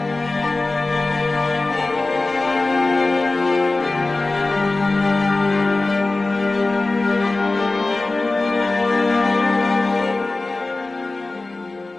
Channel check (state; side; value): quieter; right; 3.2 dB